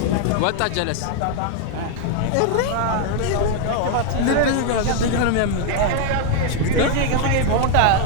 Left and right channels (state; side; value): different; both; correlation 0.00